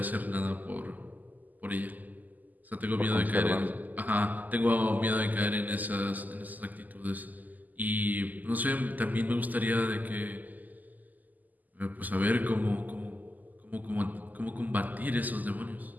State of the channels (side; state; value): left; late; 0.082 ms